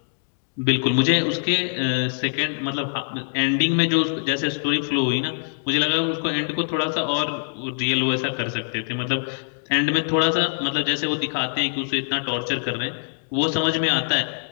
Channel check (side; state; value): right; silent; digital silence